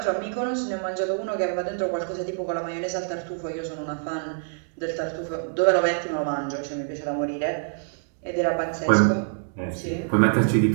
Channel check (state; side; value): silent; left; 57 dB below the other